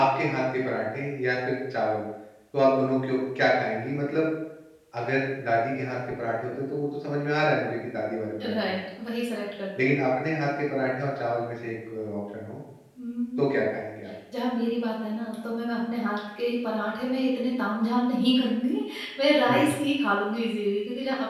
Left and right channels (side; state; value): both; identical; correlation 1.00